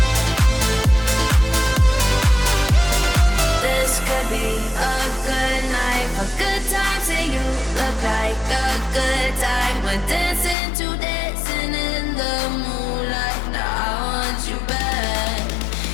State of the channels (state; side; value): drops out; right; at 10.6 s